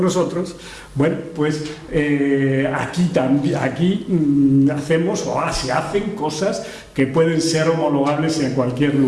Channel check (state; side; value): identical; both; correlation 1.00